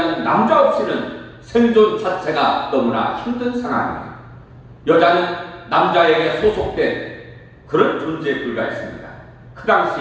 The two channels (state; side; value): identical; both; correlation 1.00